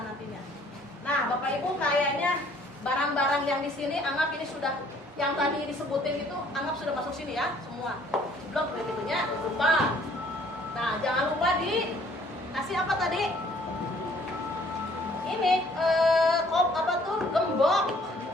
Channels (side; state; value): both; normal; correlation 0.59